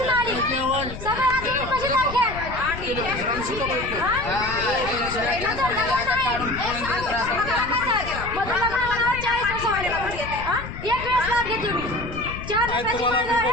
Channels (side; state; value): left; noise; rumble, 10 dB below the sound